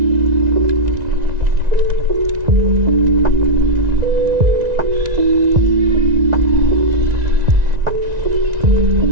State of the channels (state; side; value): late; left; 1.9 ms